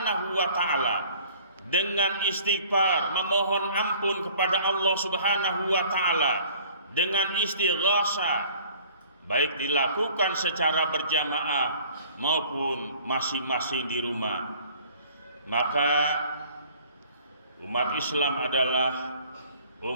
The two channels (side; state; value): both; inverted; correlation -0.52